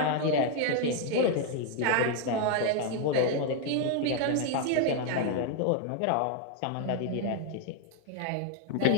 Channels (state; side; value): different; both; correlation 0.00